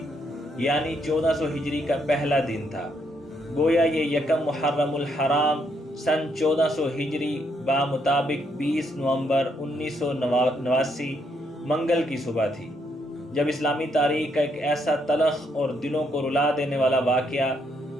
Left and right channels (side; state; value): both; normal; correlation 0.74